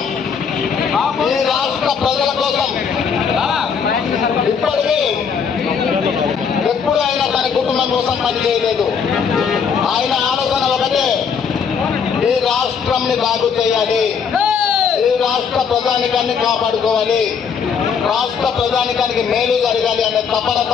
ఈ రాష్ట్ర ప్రజల కోసం ఇప్పటికీ ఎప్పుడు ఆయన తన కుటుంబం కోసం పనిచేయలేదు. ఆయన ఆలోచన ఒకటే, ఈ రాష్ట్రంని బాగు చేయాలి, ఈ రాష్ట్ర ప్రజానికాన్ని కాపాడుకోవాలి, రాష్ట్ర ప్రజానికానికి మేలు జరగాలి అనే తపన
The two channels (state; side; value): quieter; right; 6.5 dB